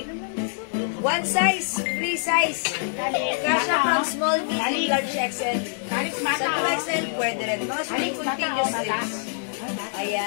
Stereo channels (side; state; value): right; silent; 62 dB below the other